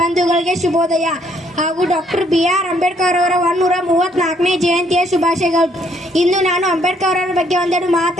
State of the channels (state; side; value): normal; both; correlation 0.67